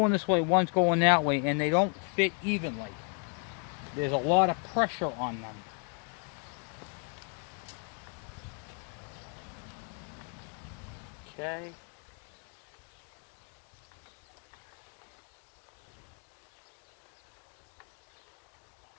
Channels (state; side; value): quieter; right; 39.5 dB